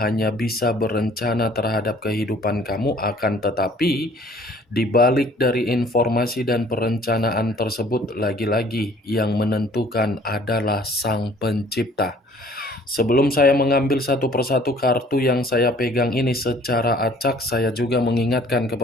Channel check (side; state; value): both; normal; correlation 0.55